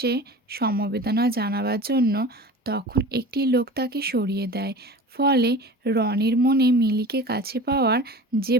সমবেদনা জানাবার জন্য, তখন একটি লোক তাকে সরিয়ে দেয়। ফলে রনির মনে মিলিকে কাছে পাওয়ার যে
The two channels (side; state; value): both; normal; correlation 0.36